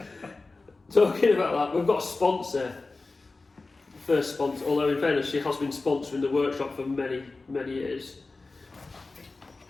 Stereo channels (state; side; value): quieter; right; 3.6 dB